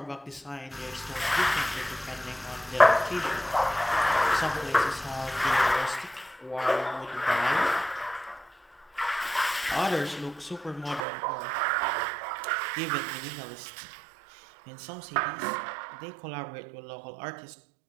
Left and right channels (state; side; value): drops out; left; at 11.1 s